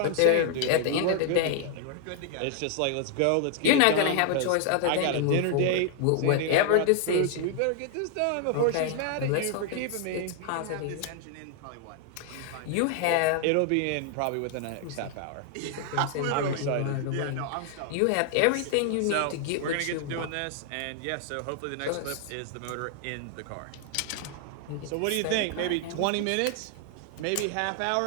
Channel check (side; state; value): both; different; correlation 0.00